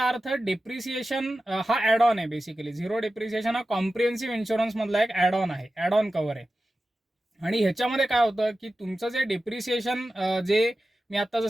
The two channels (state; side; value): normal; both; correlation 0.94